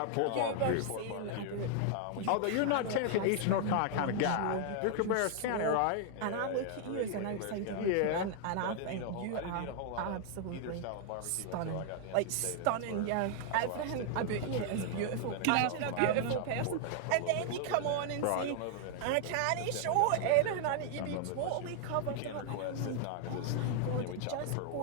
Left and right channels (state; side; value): different; both; correlation 0.00